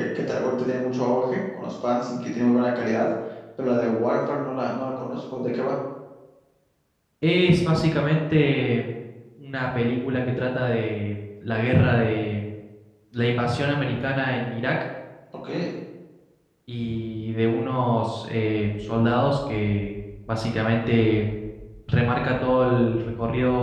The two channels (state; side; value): identical; both; correlation 1.00